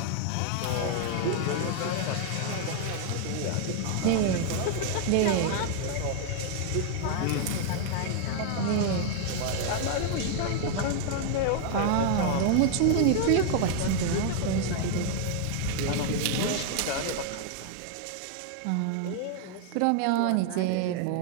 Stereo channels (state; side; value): different; both; correlation 0.00